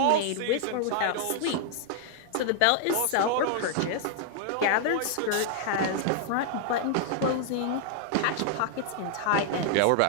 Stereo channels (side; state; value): both; different; correlation -0.01